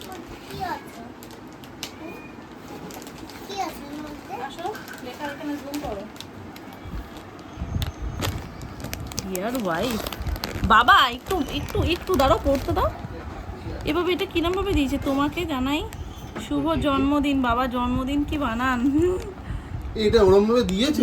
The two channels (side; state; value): both; identical; correlation 1.00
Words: বাবা একটু একটু একটু দাঁড়াও, পড়তে দাও। এভাবে এটা কিরম ভাবে দিয়েছে তোমাকে জানাই, শুভ জন্মদিন। বাবা জন্মদিন কি বানান, এটা ওরম ভাবে দিয়েছে